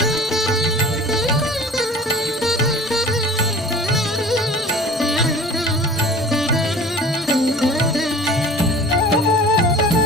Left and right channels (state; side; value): normal; both; correlation 0.43